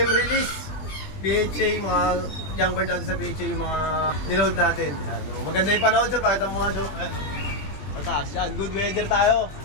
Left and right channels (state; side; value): late; right; 20 ms